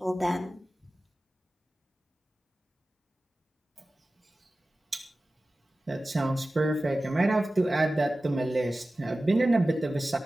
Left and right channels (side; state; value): both; normal; correlation 0.96